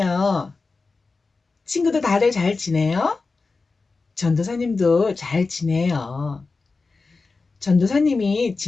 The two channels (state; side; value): quieter; right; 4.0 dB